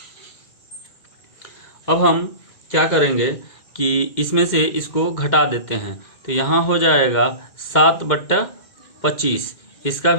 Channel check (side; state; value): right; late; 2.1 ms